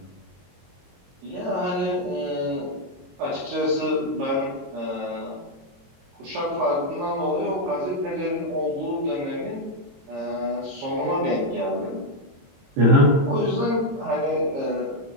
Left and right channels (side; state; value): left; late; 22 ms